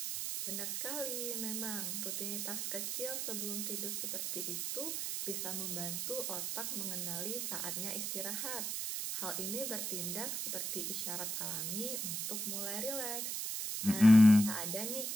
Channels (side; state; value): right; noise; hiss, 2 dB below the sound